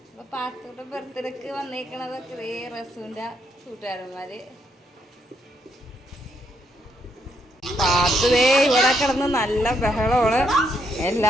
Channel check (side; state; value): both; normal; correlation 0.75